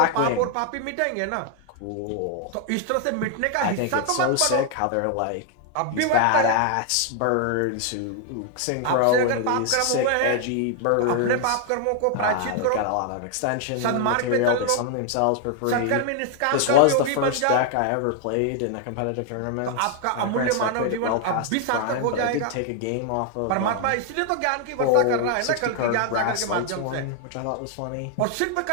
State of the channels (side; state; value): both; different; correlation 0.00